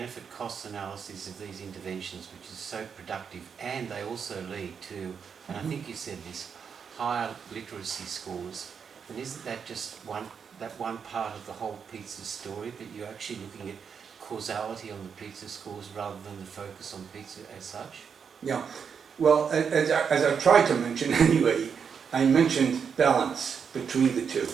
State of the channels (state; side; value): quieter; left; 6.7 dB